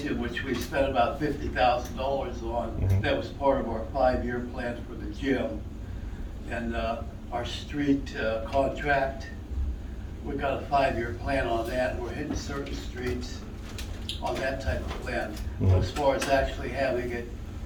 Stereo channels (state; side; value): identical; both; correlation 1.00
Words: which we spent about $50,000 on. That was part of our 5-year plan for the gym. And our street contract, we got a 5-year plan on that, and we're hitting certain streets on that type of plan. But as far as actually having it